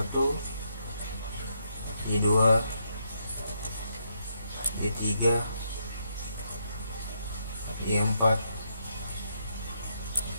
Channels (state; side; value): inverted; both; correlation -0.77